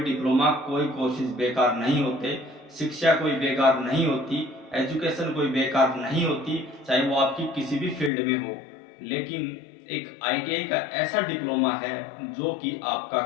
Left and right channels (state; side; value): drops out; right; at 8.1 s